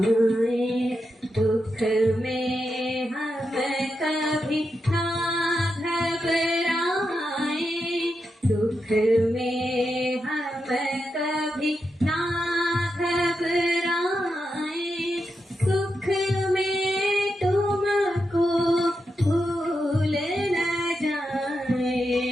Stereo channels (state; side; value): normal; both; correlation 0.86